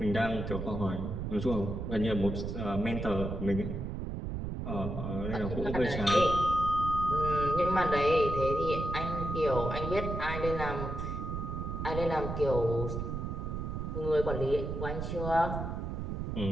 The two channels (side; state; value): right; noise; rumble, 4 dB below the sound